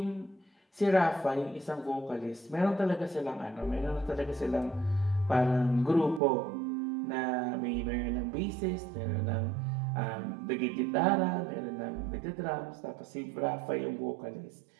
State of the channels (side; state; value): left; drops out; at 6.2 s